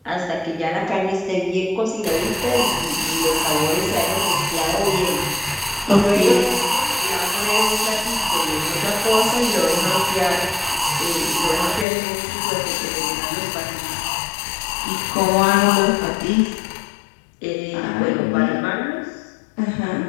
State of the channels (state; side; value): drops out; right; at 11.9 s